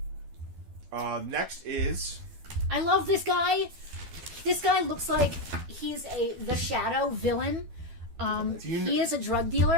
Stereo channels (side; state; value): left; late; 12 ms